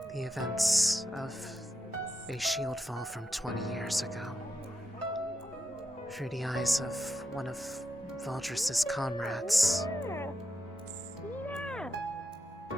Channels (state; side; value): normal; both; correlation 0.85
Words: the events of a shield fall from 20 years ago through the eyes of one of Valdris's comrades.